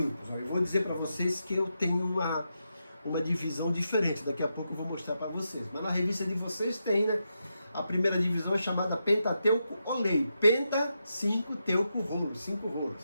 Eu vou dizer para vocês que eu tenho uma divisão diferente, daqui a pouco eu vou mostrar para vocês. Mas na revista de vocês tem, né? A primeira divisão é chamada Pentateuco Olei. Penta, 5, Teuco, rolo, 5 rolos.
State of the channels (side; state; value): both; inverted; correlation -0.86